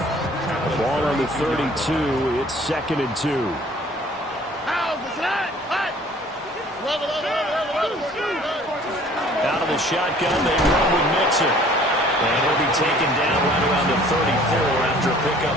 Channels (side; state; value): both; normal; correlation 0.53